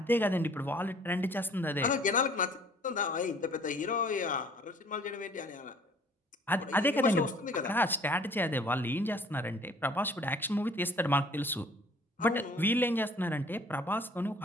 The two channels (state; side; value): normal; both; correlation 0.54